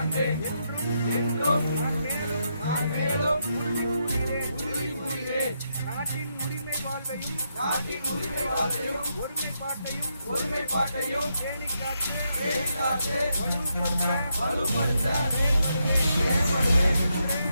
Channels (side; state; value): both; inverted; correlation -0.80